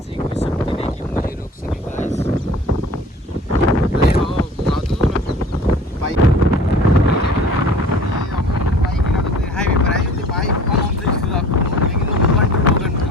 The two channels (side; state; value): both; normal; correlation 0.46